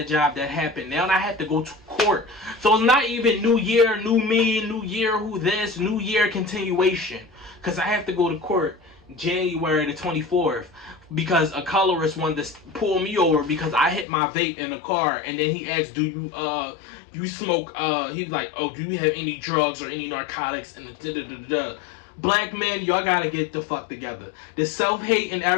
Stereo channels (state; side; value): drops out; right; at 14.1 s